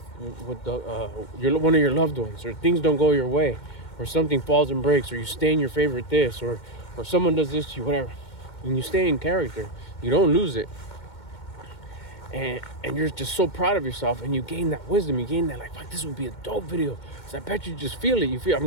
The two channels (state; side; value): late; right; 2.2 ms